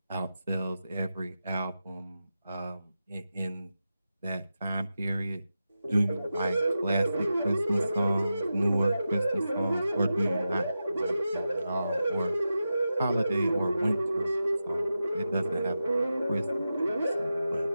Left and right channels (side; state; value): both; inverted; correlation -0.91